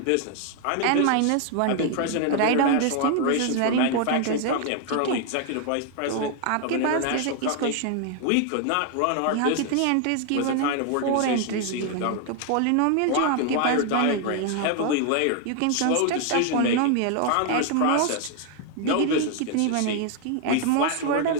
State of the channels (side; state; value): both; different; correlation 0.00